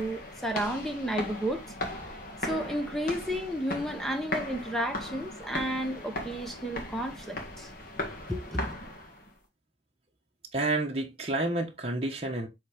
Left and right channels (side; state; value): both; normal; correlation 0.52